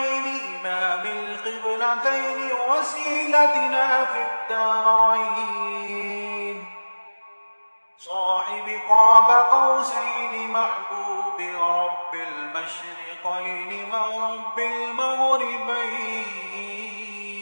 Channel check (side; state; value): both; inverted; correlation -1.00